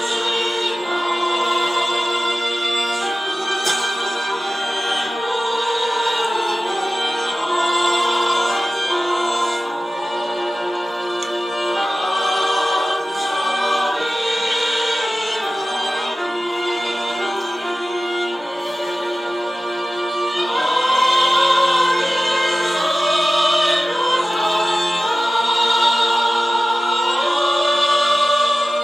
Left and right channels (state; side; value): normal; both; correlation 0.95